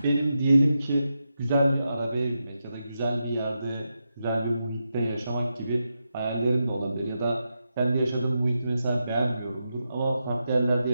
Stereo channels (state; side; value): inverted; both; correlation -0.87